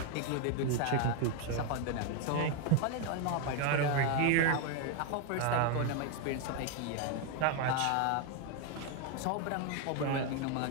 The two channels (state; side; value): different; both; correlation 0.01